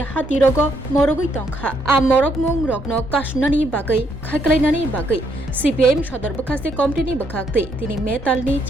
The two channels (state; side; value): normal; both; correlation 0.72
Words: हातिरग मरगै तंखा आ मरक मुं रगनो कासुनानि बागै खायख्लायनानि बागै सीपीआईएम सदर बखासे कमिटिनि बखाक्ते तिनि मेतालनि